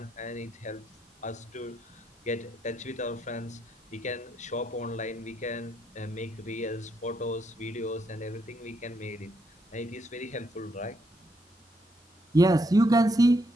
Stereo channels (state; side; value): normal; both; correlation 0.76